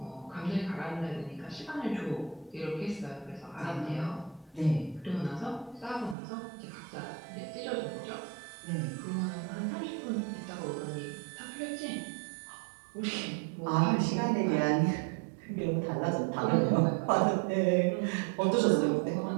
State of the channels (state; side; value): drops out; left; at 6.2 s